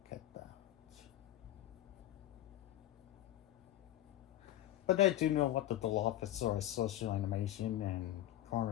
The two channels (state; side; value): quieter; right; 13.5 dB